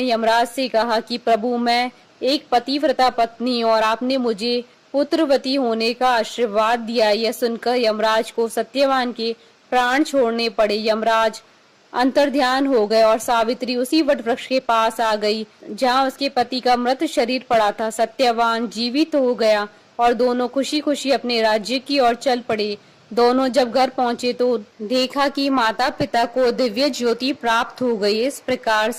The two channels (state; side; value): identical; both; correlation 1.00